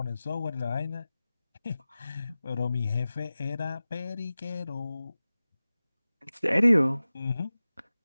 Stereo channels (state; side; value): inverted; both; correlation -0.96